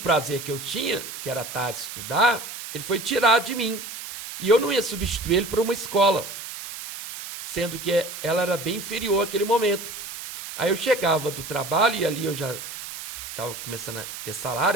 que eu tinha, que era à tarde estudar, ele foi tirado de mim. E eu não ia substituir ele por uma escola, sendo que ela era bem inferior àquele momento. Aí eu chegava do trabalho e ali eu já estava começando a ter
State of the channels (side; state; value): right; noise; hiss, 10 dB below the sound